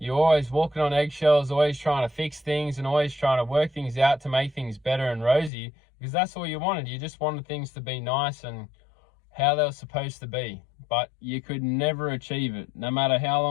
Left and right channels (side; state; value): right; drops out; at 5.5 s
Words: always walking on eggshells, always trying to fix things and always trying to work things out to make things better and rosy, because that's all you wanted. You just wanted things to be nice and how they were supposed to be, but you could never achieve it. No matter how